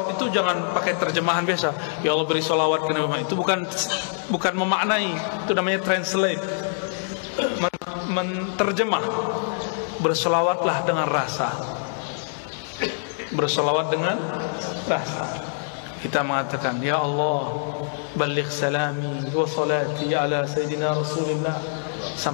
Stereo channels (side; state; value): right; silent; digital silence